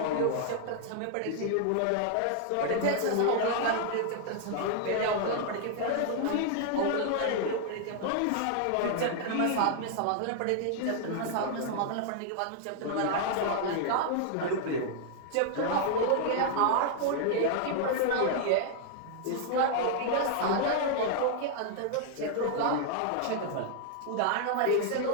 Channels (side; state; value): both; different; correlation -0.01